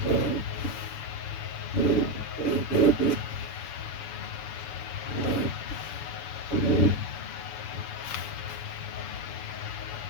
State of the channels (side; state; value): right; late; 7.0 ms